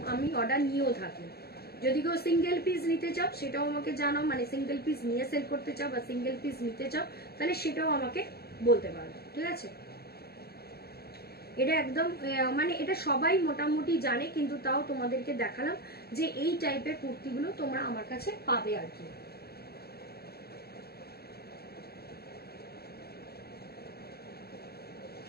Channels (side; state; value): right; late; 0.46 ms